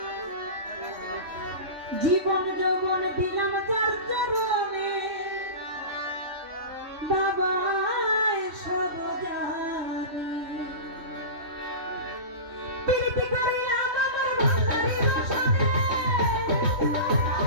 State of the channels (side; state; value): left; late; 3.1 ms